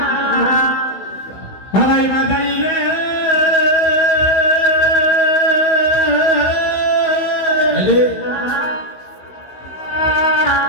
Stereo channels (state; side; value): late; right; 16 ms